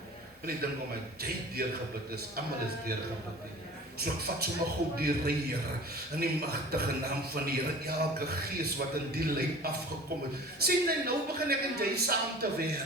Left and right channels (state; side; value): normal; both; correlation 0.42